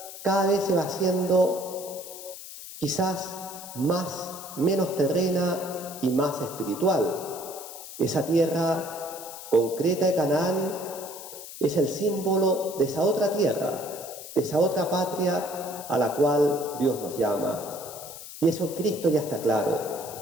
cada vez se va haciendo quizás menos terrena y más espiritual. Esa tierra concreta de Canaán es el símbolo de esa otra tierra, de esa otra patria a la cual Dios nos llama. Y eso en Cristo ya está claro.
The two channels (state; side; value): noise; left; hiss, 13 dB below the sound